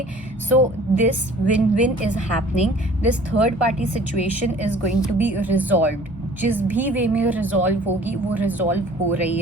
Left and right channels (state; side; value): normal; both; correlation 0.50